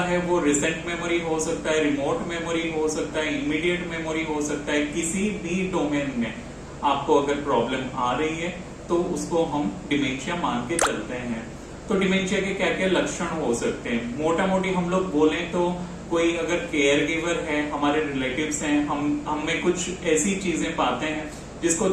है वो रिसेंट मेमोरी हो सकता है, रिमोट मेमोरी हो सकता है, इमीडिएट मेमोरी हो सकता है। किसी भी डोमेन में आपको अगर प्रॉब्लम आ रही है तो उसको हम डिमेंशिया मान के चलते हैं। तो डिमेंशिया के क्या क्या लक्षण हो सकते हैं? मोटा मोटी हम लोग बोले तो कोई अगर केयर गिवर है, हमारे रिलेटिव्स हैं, हम में कुछ ऐसी चीजें पाते हैं जिसको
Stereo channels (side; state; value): both; identical; correlation 1.00